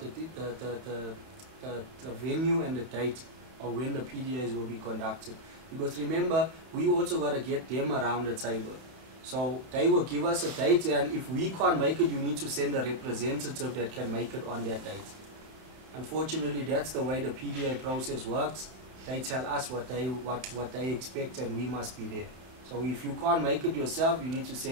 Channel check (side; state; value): left; late; 31 ms